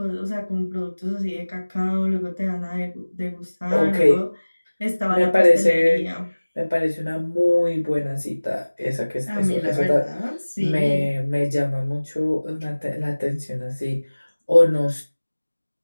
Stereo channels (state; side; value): inverted; both; correlation -1.00